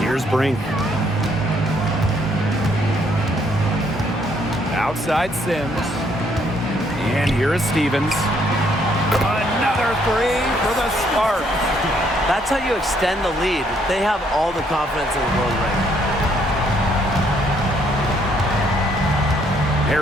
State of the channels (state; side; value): normal; both; correlation 0.69